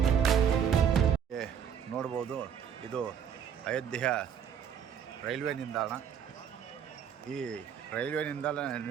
ನೋಡ್ಬೋದು, ಇದು ಅಯೋಧ್ಯೆಯ ರೈಲ್ವೆ ನಿಲ್ದಾಣ. ಈ ರೈಲ್ವೆ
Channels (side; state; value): left; quieter; 8.0 dB